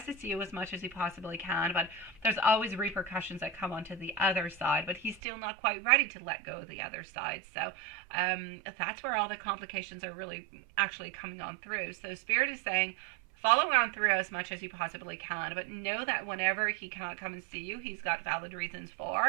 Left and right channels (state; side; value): drops out; left; at 5.2 s